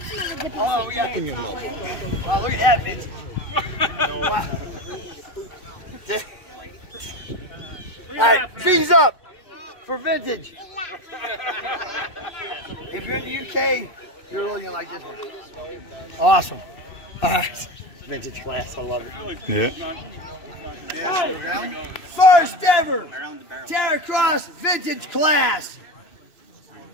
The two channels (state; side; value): late; right; 2.6 ms